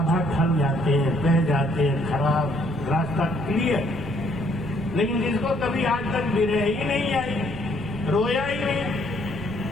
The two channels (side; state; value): right; noise; rumble, 14 dB below the sound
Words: ढल जाते हैं, बह जाते हैं, खराब रास्ता क्लियर। लेकिन जिसको कभी आज तक विरह ही नहीं आई, रोया ही नहीं,